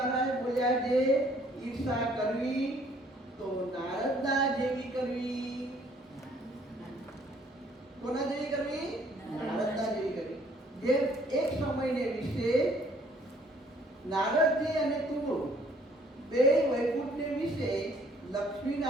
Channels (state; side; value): normal; both; correlation 0.61